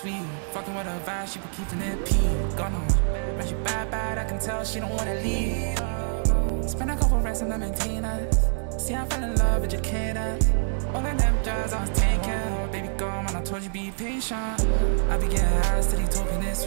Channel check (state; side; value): silent; left; digital silence